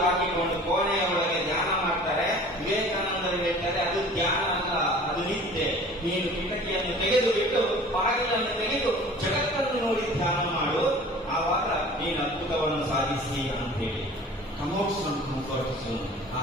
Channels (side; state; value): both; normal; correlation 0.45